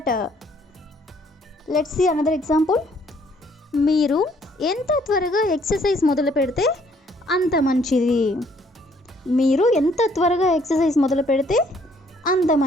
Let's see another example. మీరు ఎంత త్వరగా ఎక్సర్సైజ్ మొదలు పెడితే అంత మంచిది. మీరు ఎంత త్వరగా ఎక్సర్సైజ్ మొదలు పెడితే అంత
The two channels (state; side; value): normal; both; correlation 0.64